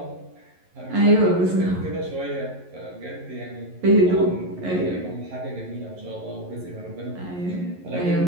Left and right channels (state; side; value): late; left; 11 ms